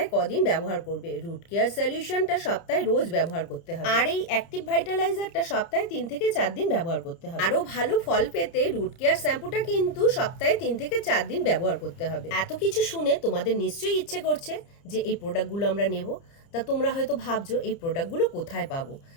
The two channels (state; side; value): late; right; 30 ms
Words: কদিন ব্যবহার করবে। রুট কেয়ার সলিউশনটা সপ্তাহে রোজ ব্যবহার করতে হবে, আর এই অ্যাক্টিভ ভাইটালাইজারটা সপ্তাহে 3 থেকে 4 দিন ব্যবহার করতে হবে। আরো ভালো ফল পেতে রুট কেয়ার শ্যাম্পুটা কিন্তু সপ্তাহে 3 থেকে 4 দিন ব্যবহার করতে হবে। এত কিছু শুনে তোমাদের নিশ্চয়ই ইচ্ছে করছে যে এই প্রোডাক্টগুলো আমরা নেব। তা তোমরা হয়তো ভাবছো এই প্রোডাক্টগুলো কোথায় পাবো।